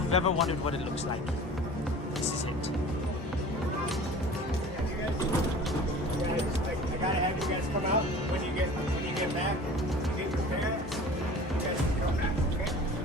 you've ever wondered what it looks like, this is it. I gotta have you guys come out when you get back. You get your parents. You guys can come back, okay?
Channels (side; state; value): both; normal; correlation 0.41